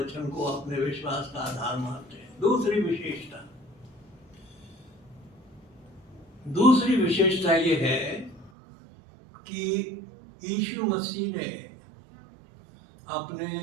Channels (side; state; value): left; drops out; at 8.5 s